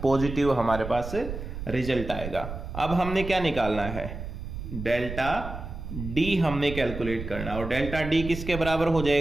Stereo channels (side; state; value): right; noise; rumble, 8 dB below the sound